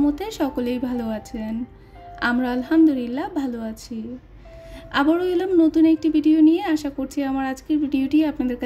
সকলেই ভালো আছেন। আমরা আলহামদুলিল্লাহ ভালো আছি। আবারও এলাম নতুন একটি ভিডিও নিয়ে। আশা করছি আমার আজকের ভিডিওটি আপনাদের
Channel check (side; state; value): both; identical; correlation 1.00